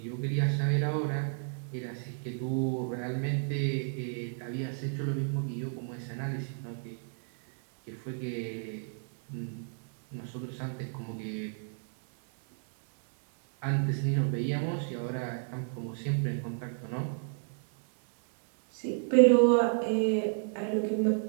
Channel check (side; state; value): left; silent; 57 dB below the other